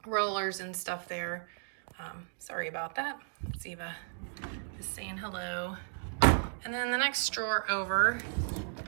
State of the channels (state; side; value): silent; left; digital silence